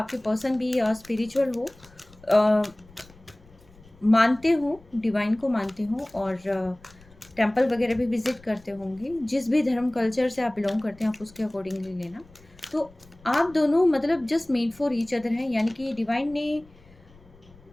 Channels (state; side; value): noise; left; rumble, 26 dB below the sound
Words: पर्सन भी स्पिरिचुअल हो, मानते हो, डिवाइन को मानते हो, और टेंपल वगैरह भी विजिट करते होंगे। जिस भी धर्म कल्चर से आप बिलोंग करते हैं, आप उसके अकॉर्डिंगली लेना। तो आप दोनों मतलब just made for each other हैं, यानी कि डिवाइन ने